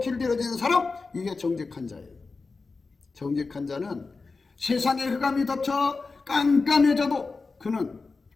길들여지는 사람, 이게 정직한 자예요. 정직한 자는 세상의 흑암이 덮쳐 깜깜해져도 그는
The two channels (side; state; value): right; quieter; 4.1 dB